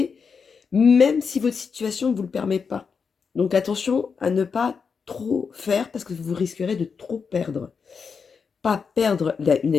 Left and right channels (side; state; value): right; quieter; 5.7 dB